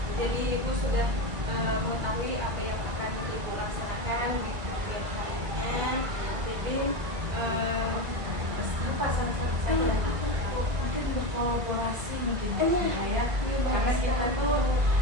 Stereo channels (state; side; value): late; left; 1.8 ms